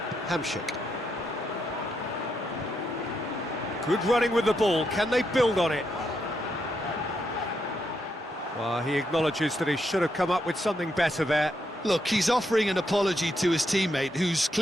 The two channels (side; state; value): both; normal; correlation 0.81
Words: Hamsik. Good running with the ball. Can they build on it? Well, he acknowledges that he should have come up with something better there. Look, he's offering an apology to his teammate, who's